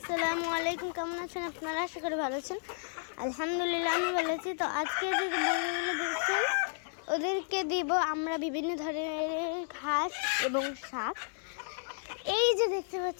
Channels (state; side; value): silent; right; digital silence